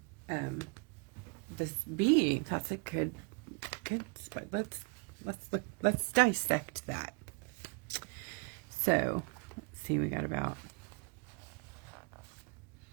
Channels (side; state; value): left; quieter; 32.3 dB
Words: this bee. That's a good spot. Let's dissect that. So let's see, we got about,